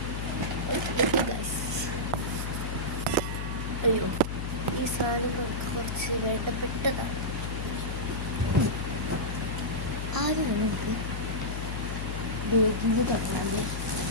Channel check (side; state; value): left; noise; hum, 3 dB below the sound